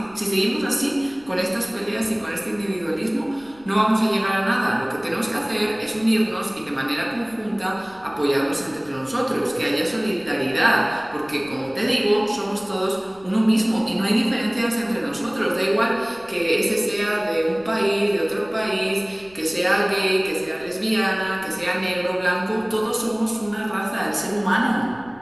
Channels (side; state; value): left; noise; rumble, 27 dB below the sound